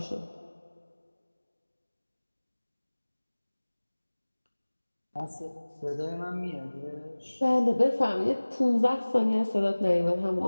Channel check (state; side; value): inverted; both; correlation -1.00